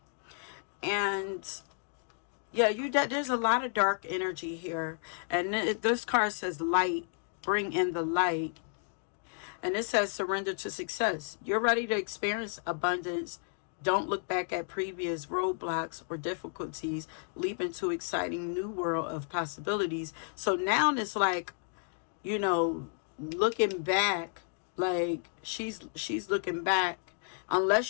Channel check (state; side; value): silent; right; 56 dB below the other